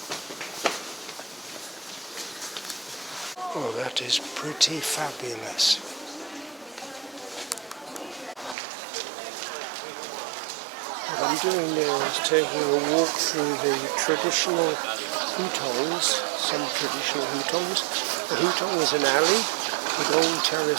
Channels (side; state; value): left; drops out; at 8.6 s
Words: Oh, that is pretty fabulous. What I'm doing now is taking a walk through the traditional hutongs, some traditional hutongs. A hutong is an alley with old